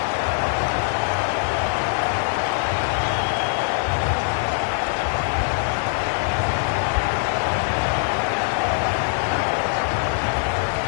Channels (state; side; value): silent; right; digital silence